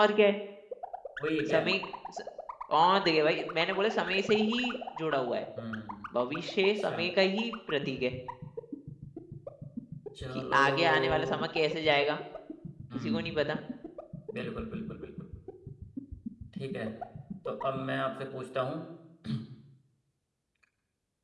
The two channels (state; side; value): identical; both; correlation 1.00